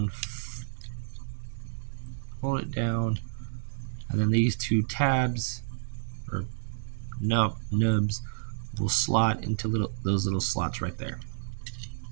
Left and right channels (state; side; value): silent; left; digital silence